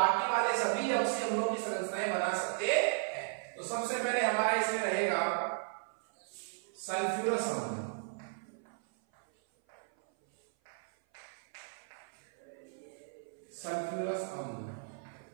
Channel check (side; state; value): left; silent; 54 dB below the other